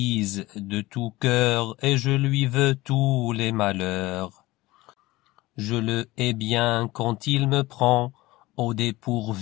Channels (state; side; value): quieter; right; 19.4 dB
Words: de tout cœur et je lui veux tous les malheurs. Je le hais bien quand il me prend au